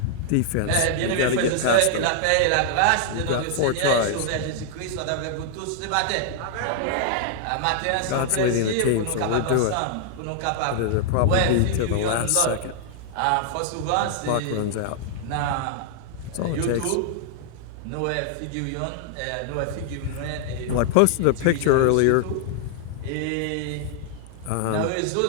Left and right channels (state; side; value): different; both; correlation -0.01